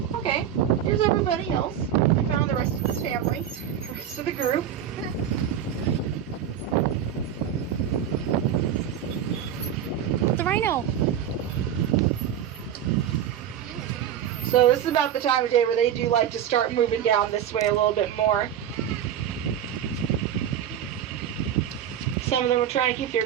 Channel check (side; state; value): left; quieter; 9.6 dB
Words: Okay, here's everybody else. We found the rest of the family, the rest of the group. The rhino. So this is about the time of day where they do like to start moving down this way a little bit more. Some of them are trying to keep